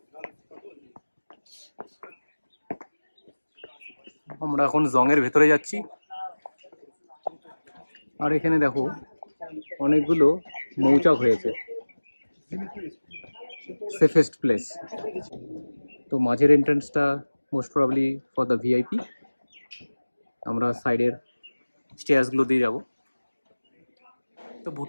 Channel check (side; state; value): both; inverted; correlation -1.00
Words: আমরা এখন জংয়ের ভেতরে যাচ্ছি, আর এখানে দেখো অনেকগুলো মৌচাক হয়েছে, সেফেস্ট প্লেস। তো মাঝের এন্ট্রান্সটা most probably for the VIP, আমরা সাইডের স্টেয়ার্সগুলো দিয়ে যাব। তো